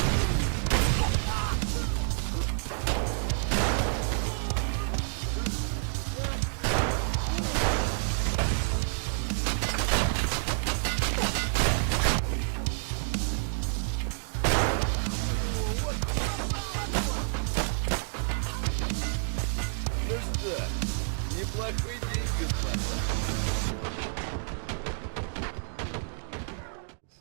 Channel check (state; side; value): silent; left; digital silence